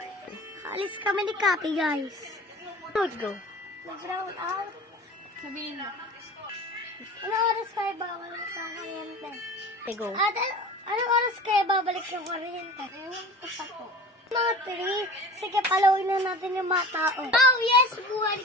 Alis kami ni Kapi, guys. Let's go. Mag-round out. Sabihin mo. Ano oras kayo babalik ng kuryente? Go. Ate, ano oras kayo babalik ng kuryente? Ewan ko pa po. Mga 3. Sige, palawin na natin yung mga tao. Oh, yes!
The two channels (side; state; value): both; normal; correlation 0.38